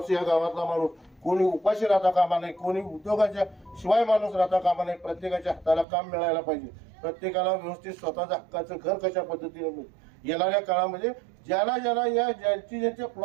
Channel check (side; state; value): left; drops out; at 5.9 s